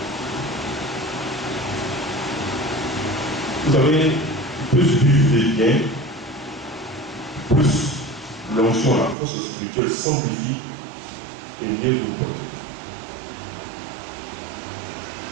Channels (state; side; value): drops out; left; at 9.2 s